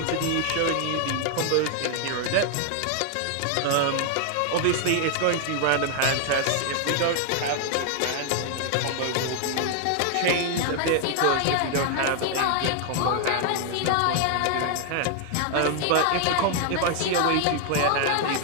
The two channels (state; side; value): different; both; correlation 0.00